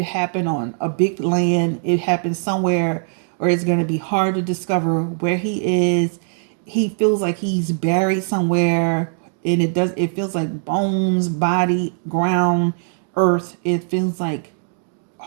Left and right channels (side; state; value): left; silent; digital silence